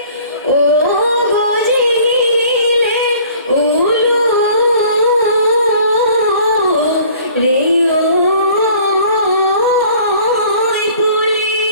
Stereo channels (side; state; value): both; inverted; correlation -0.51